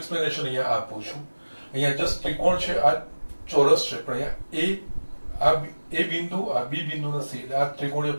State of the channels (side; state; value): both; inverted; correlation -1.00